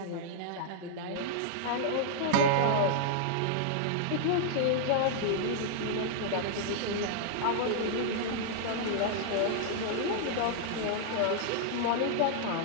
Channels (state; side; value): different; both; correlation -0.01